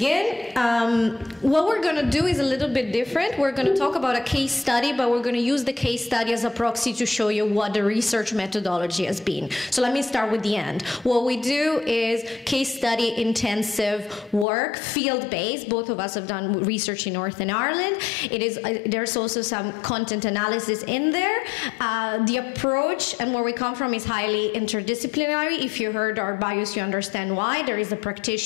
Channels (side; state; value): right; drops out; at 14.5 s